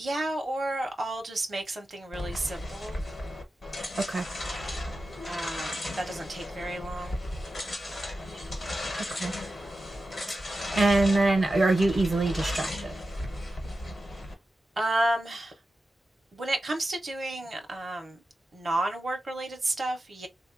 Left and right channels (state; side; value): normal; both; correlation 0.92